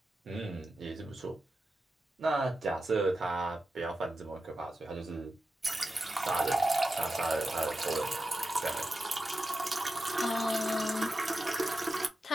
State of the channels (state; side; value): normal; both; correlation 0.91